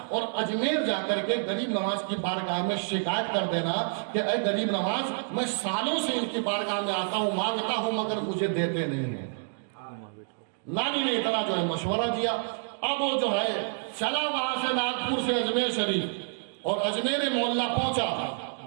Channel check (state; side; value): silent; left; digital silence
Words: اور اجمیر جا کر کے غریب نواز کی بارگاہ میں شکایت کر دینا کہ اے غریب نواز، میں سالوں سے ان کی بارگاہ میں آتا ہوں، مانگتا ہوں مگر مجھے دیتے نہیں ہیں. نانی نے اتنا جو ہے مشورہ دیا. اب وہ جو ہے چلا وہاں سے ناگپور سے اجمیر شریف اور اجمیر محلہ پہنچا.